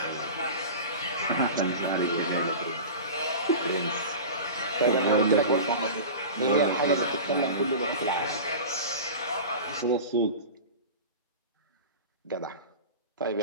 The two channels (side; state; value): both; inverted; correlation -0.31